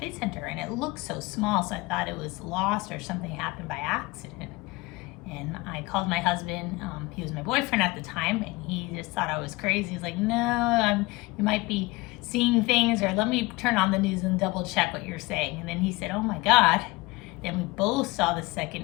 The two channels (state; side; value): quieter; right; 22.2 dB